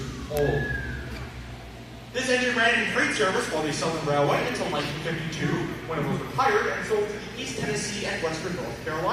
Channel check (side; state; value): both; identical; correlation 1.00